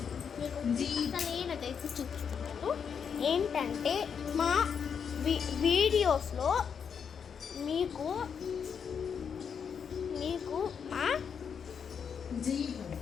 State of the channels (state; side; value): quieter; right; 6.9 dB